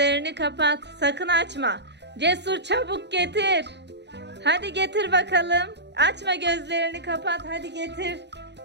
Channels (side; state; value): left; late; 0.50 ms